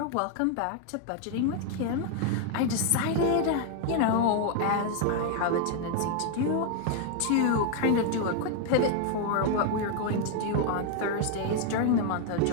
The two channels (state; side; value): different; both; correlation 0.00